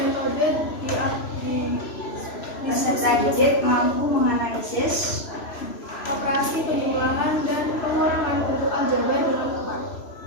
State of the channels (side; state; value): right; late; 3.0 ms